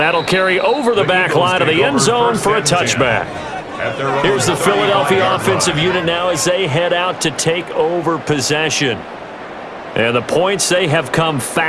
that'll carry over the back line of the end zone for a touchback. Here's the Philadelphia offensive unit now as they head out to take over possession. And the points, they have come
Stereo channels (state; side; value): identical; both; correlation 1.00